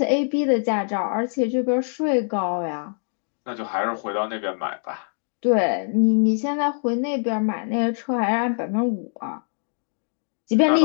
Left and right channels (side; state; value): right; silent; digital silence